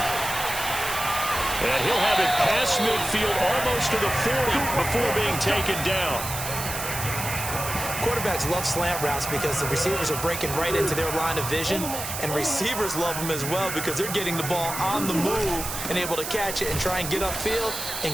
And he'll have it past midfield almost to the 40 before being taken down. Quarterbacks love slant routes because the receivers are breaking right into their line of vision, and receivers love them as well because they're getting the ball on the move and able to catch it and try and get upfield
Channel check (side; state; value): right; noise; hiss, 6 dB below the sound